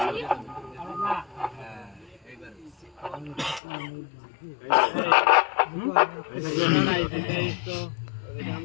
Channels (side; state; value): right; drops out; at 3.6 s